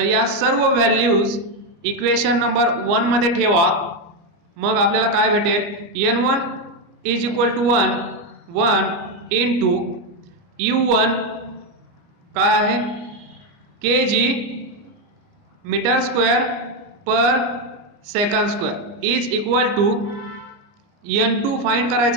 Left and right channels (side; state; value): left; late; 29 ms